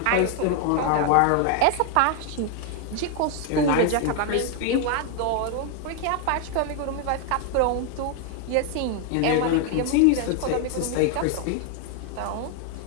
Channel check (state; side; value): different; both; correlation 0.00